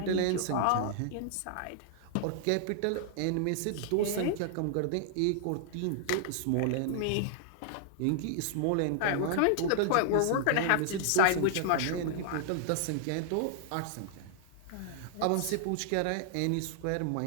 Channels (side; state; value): both; different; correlation -0.01